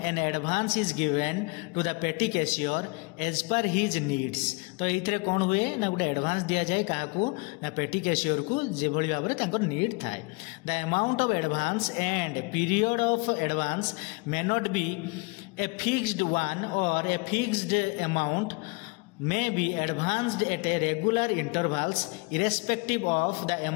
an advance is given to the petty cashier as per his needs. तो ये कौन हुए ना गोटे एडवांस दिया जाए काहाकू ना पेटी कैशियर को जे भली भाव में तांकर नीड थाए। The amount of advance and period of advance may not be a fixed one or a fixed amount may be advanced at a regular intervals irrespective of the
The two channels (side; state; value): right; quieter; 29.1 dB